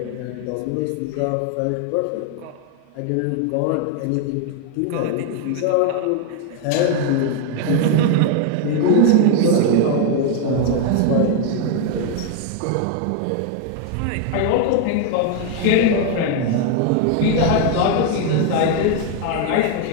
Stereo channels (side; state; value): both; different; correlation 0.01